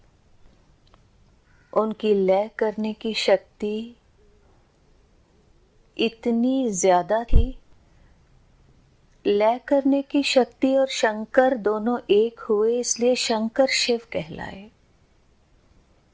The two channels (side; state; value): both; identical; correlation 1.00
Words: उनकी लय करने की शक्ति इतनी ज्यादा थी। लय करने की शक्ति और शंकर दोनों एक हुए, इसलिए शंकर शिव कहलाए।